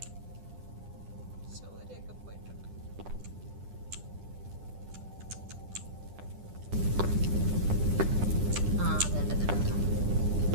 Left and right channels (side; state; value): left; late; 10 ms